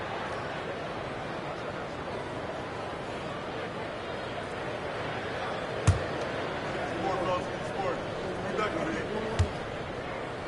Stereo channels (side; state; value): both; identical; correlation 1.00